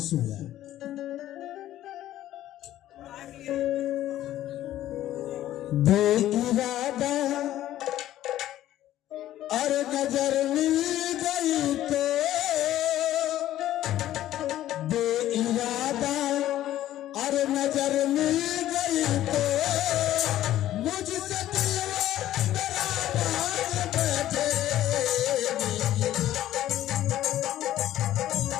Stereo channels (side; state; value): right; quieter; 13.3 dB